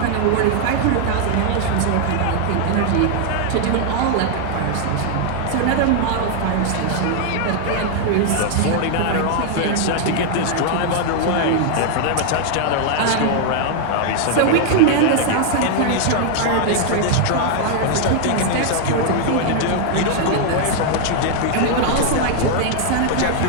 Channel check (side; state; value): both; different; correlation 0.00